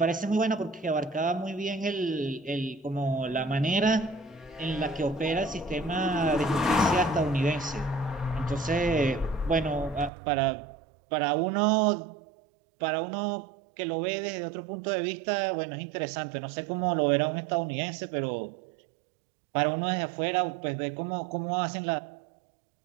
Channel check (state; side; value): drops out; left; at 10.1 s